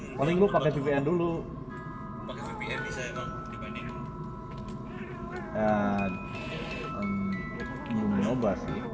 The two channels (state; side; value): identical; both; correlation 1.00